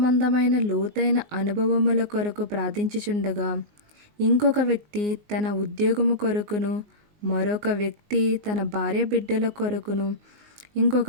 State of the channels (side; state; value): left; late; 19 ms